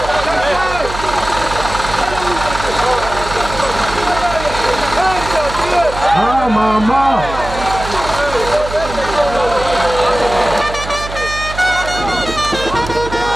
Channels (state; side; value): noise; right; hum, 10 dB below the sound